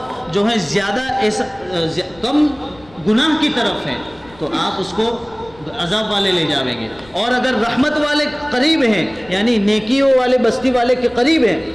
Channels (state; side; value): noise; left; rumble, 25 dB below the sound